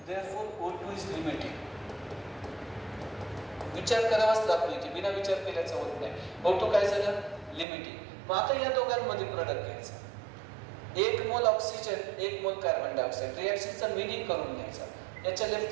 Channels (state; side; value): drops out; left; at 7.7 s